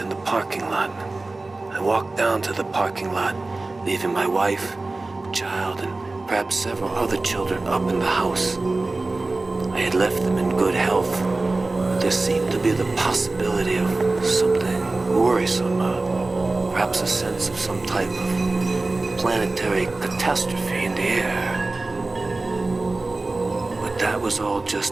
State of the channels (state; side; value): quieter; left; 3.2 dB